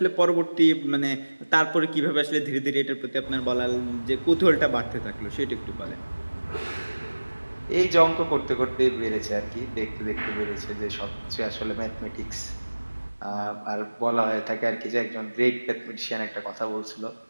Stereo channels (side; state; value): both; inverted; correlation -1.00